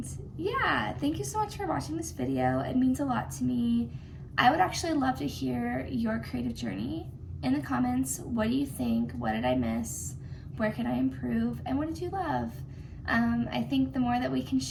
yeah, thank you so much for watching this video. It means a lot to me. I would actually love to hear your creative journey in the comments. What do you think? What did I miss? Where can I improve? And what did you love? I think the more that we can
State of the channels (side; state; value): both; identical; correlation 1.00